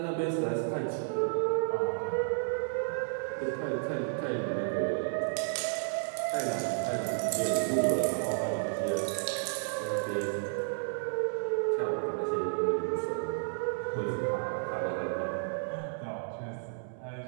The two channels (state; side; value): silent; left; 56 dB below the other